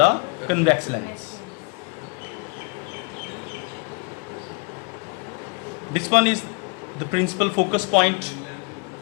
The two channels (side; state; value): right; quieter; 31.2 dB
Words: convex lens. This one is the principal focus point.